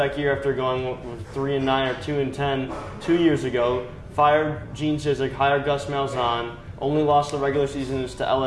year after going with 3 and 9 or 2 and 10 2 years ago, fired Gene Chizik, hired Gus Malzahn, only lost the regular seasons to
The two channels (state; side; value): identical; both; correlation 1.00